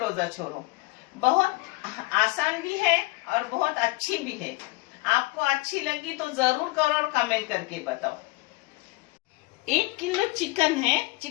छोड़ो। बहुत आसान भी है और बहुत अच्छी भी है। आपको अच्छी लगी तो जरूर करो और कमेंट करके बताओ। 1 किलो चिकन है।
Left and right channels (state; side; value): quieter; right; 23.1 dB